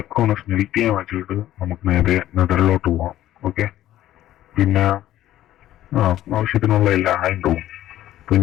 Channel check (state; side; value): quieter; right; 13.5 dB